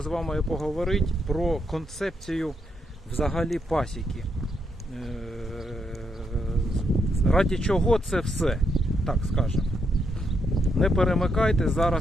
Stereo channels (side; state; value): both; normal; correlation 0.79